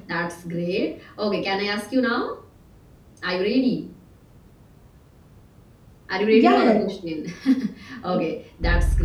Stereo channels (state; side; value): identical; both; correlation 1.00